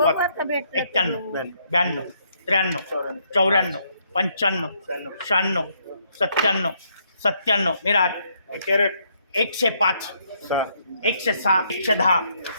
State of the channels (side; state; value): both; inverted; correlation -0.72